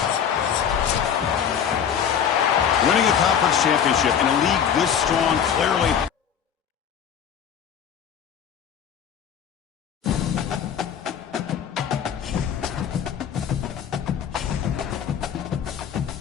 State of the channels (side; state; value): right; quieter; 8.2 dB